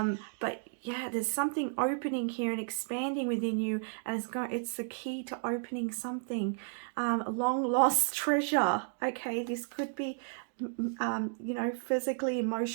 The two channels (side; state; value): left; silent; digital silence